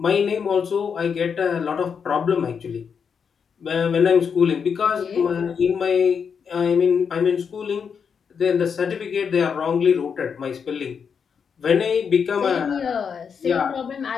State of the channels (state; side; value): quieter; right; 6.5 dB